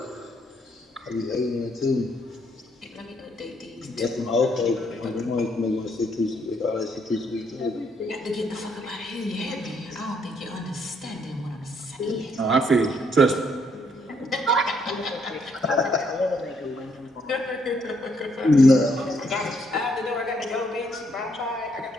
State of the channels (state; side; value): normal; both; correlation 0.71